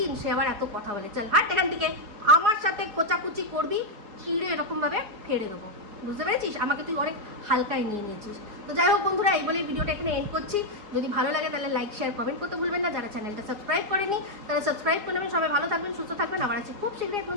সে আবার এত কথা বলে। চল হাট এখান থেকে, আমার সাথে কোচাকুচি করবি, চিড়ে এরকমভাবে ফেড়ে দেবো, বুঝতে পেরেছিস? আমাকে তুই অনেক হালকায় নিয়ে নিয়েছিস। তো যাই হোক বন্ধুরা, এই বলে ভিডিওটা এখানে এন্ড করছি। যদি ভালো লাগে তাহলে লাইক শেয়ার কমেন্ট করতে ভুলবেন না। যারা চ্যানেলটা সাবস্ক্রাইব করেনি তারা সাবস্ক্রাইব করে নেবেন। সবাই ভালো থাকবেন, সুস্থ থাকবেন। আবার আছি খুব শীঘ্রই এক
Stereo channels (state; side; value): late; left; 4.9 ms